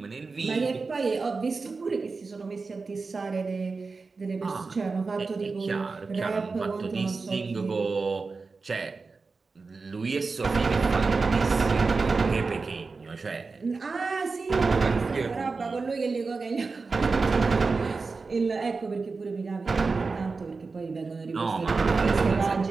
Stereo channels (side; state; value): left; quieter; 4.2 dB